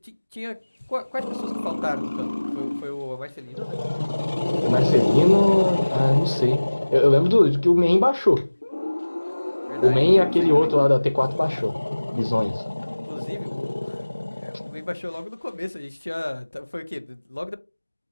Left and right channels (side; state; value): both; inverted; correlation -1.00